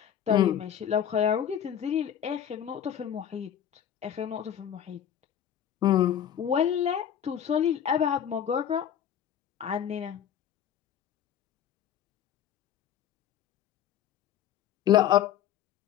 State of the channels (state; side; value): quieter; right; 9.6 dB